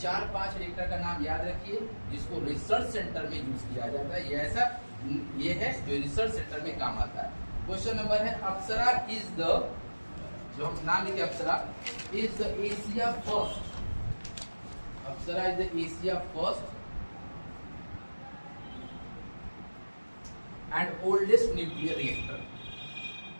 रिएक्टर का नाम याद रखिए जिसको रिसर्च सेंटर में यूज किया जाता है, ये है जो रिसर्च सेंटर में काम आता है। क्वेश्चन नंबर है अप्सरा इज द, जो हम नाम लिखे Apsara is the Asia first, Apsara is the Asia first and oldest nuclear reactor.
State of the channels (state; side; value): inverted; both; correlation -1.00